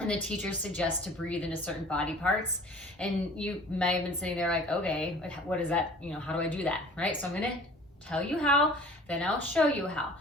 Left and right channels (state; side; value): normal; both; correlation 0.46